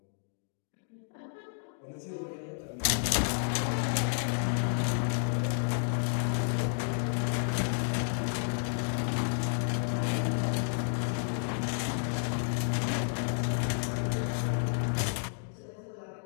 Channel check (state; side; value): silent; right; digital silence